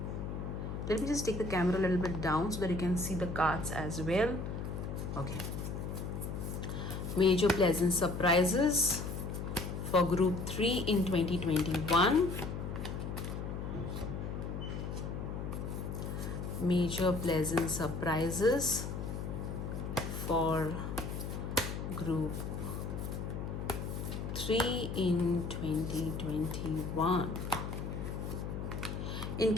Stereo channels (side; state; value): left; noise; hum, 5 dB below the sound